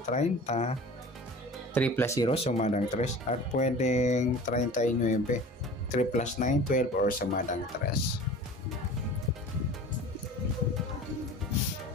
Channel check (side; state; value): both; normal; correlation 0.40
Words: 30, 3 plus 0 sumadang 3. At pwedeng 39, 3 plus 9, 12 or sumadang 3.